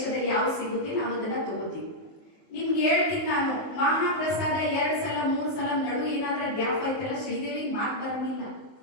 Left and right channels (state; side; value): late; right; 19 ms